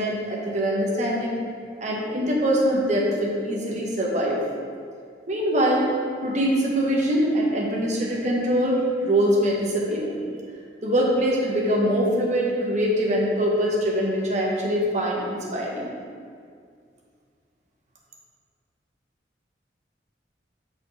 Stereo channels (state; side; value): normal; both; correlation 0.42